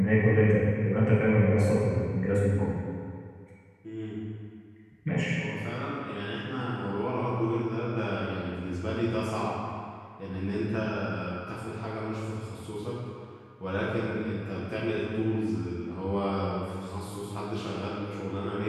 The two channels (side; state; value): both; identical; correlation 1.00